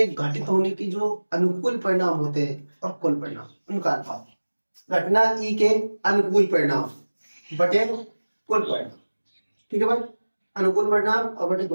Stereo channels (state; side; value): inverted; both; correlation -1.00